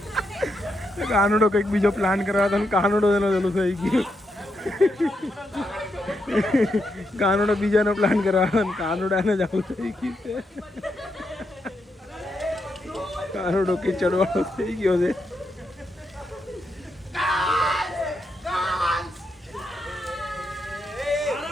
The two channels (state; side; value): normal; both; correlation 0.82